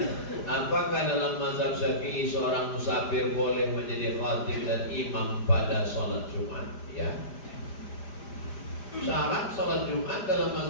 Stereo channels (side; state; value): right; late; 5.0 ms